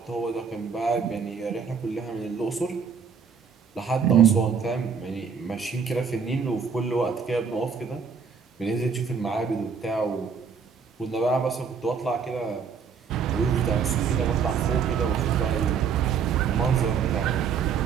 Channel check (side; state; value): left; quieter; 6.2 dB